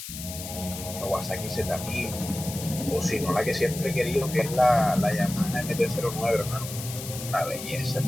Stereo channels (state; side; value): noise; left; hiss, 9 dB below the sound